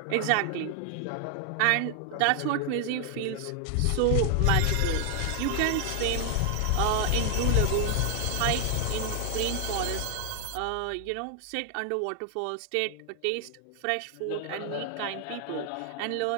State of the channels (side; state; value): both; different; correlation 0.00